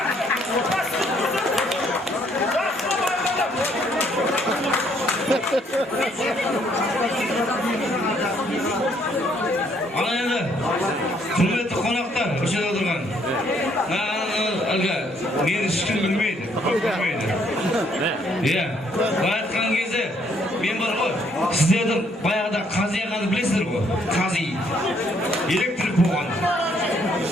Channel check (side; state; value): both; normal; correlation 0.67